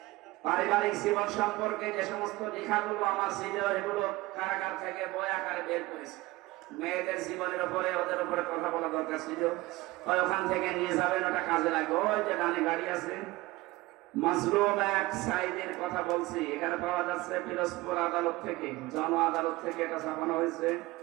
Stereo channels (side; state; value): left; quieter; 20.1 dB